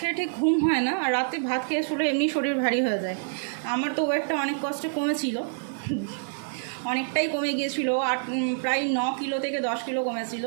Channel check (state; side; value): silent; left; 60 dB below the other